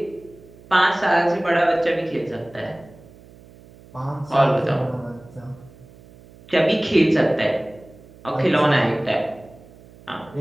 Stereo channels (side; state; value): right; noise; hum, 23 dB below the sound